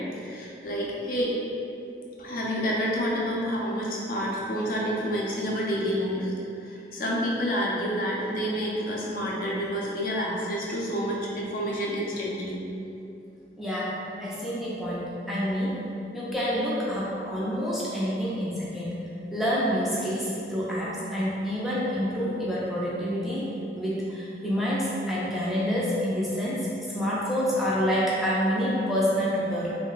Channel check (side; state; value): both; normal; correlation 0.52